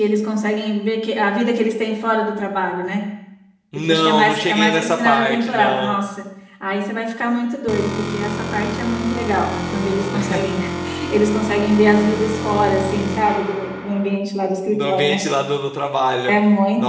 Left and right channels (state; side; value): identical; both; correlation 1.00